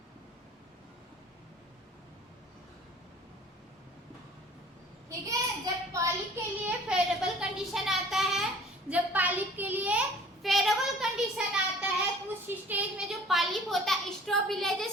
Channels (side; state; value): both; normal; correlation 0.49